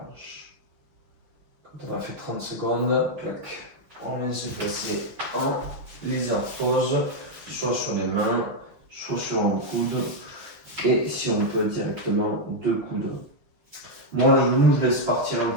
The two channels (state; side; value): late; left; 6.3 ms